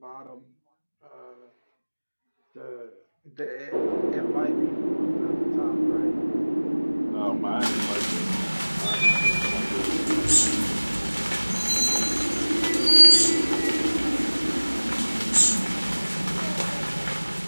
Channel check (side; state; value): both; inverted; correlation -1.00